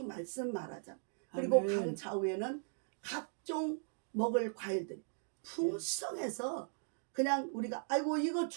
말씀 말하잖아. 그리고 아멘. 강 좌우에는 각종 먹을 과일들이 풍성해서 그냥 우리가 아이고 이거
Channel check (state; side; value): silent; left; digital silence